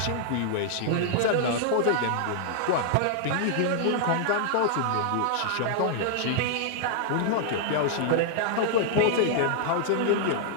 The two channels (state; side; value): different; both; correlation -0.01